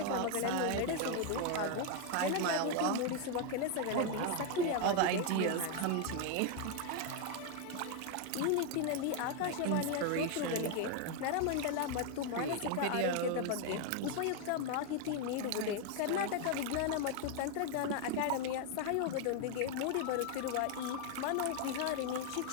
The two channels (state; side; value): different; both; correlation 0.01